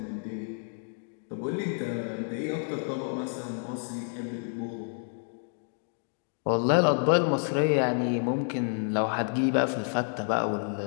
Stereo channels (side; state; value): right; silent; digital silence